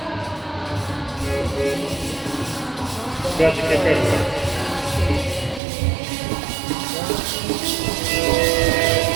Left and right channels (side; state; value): left; drops out; at 5.6 s